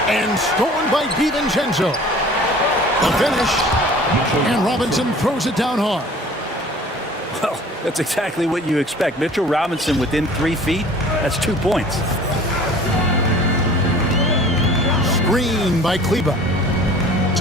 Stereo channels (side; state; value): both; normal; correlation 0.47